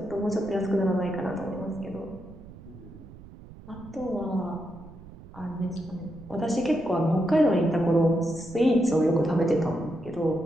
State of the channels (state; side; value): noise; right; rumble, 18 dB below the sound